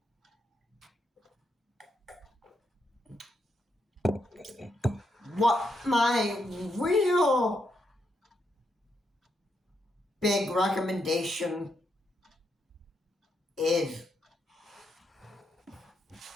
What my real big recommendation is,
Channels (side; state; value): both; normal; correlation 0.80